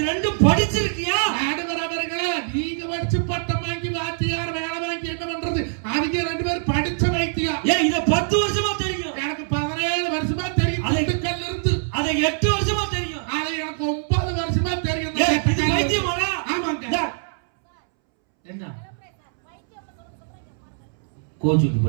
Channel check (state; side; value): silent; left; 63 dB below the other